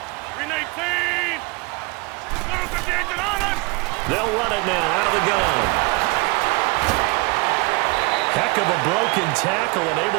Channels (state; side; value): quieter; left; 26.5 dB